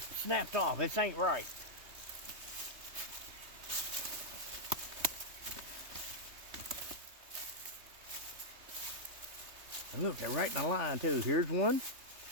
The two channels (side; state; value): left; late; 3.2 ms